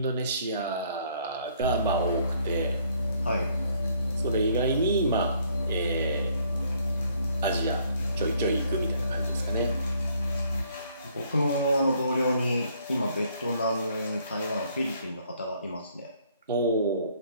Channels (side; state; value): both; inverted; correlation -0.65